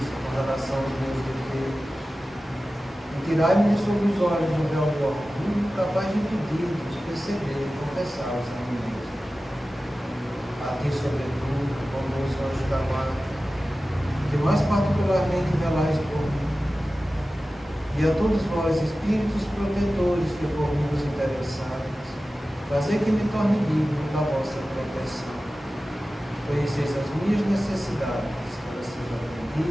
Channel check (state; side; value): normal; both; correlation 0.95